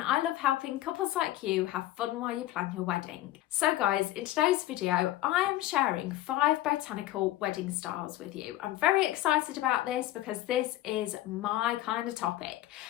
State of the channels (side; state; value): right; quieter; 15.2 dB